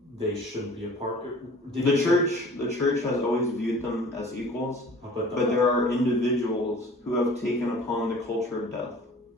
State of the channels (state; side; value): normal; both; correlation 0.47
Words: they shouldn't be a part. The church has always viewed them as equals, but there are individuals who have taken upon the culture of death.